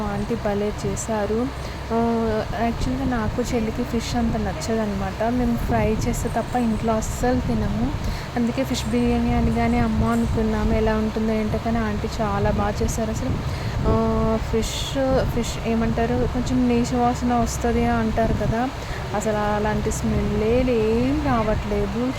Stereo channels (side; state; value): both; identical; correlation 1.00